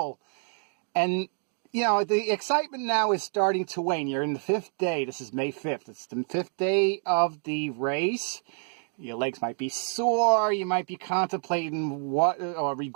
And, you know, the excitement now is starting to wane. You're in the 5th day. This is May 5th. It's the 5th day of the race. Your legs might be sore. You might be contemplating or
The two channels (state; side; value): silent; left; 60 dB below the other